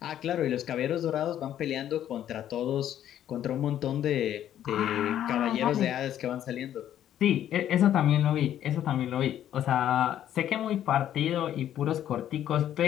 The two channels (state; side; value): quieter; right; 11.1 dB